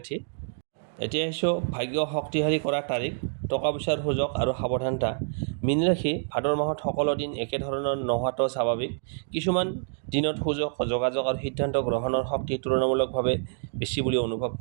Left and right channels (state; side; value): silent; left; digital silence